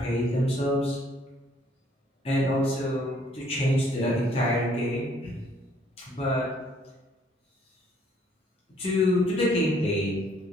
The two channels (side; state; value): both; normal; correlation 0.64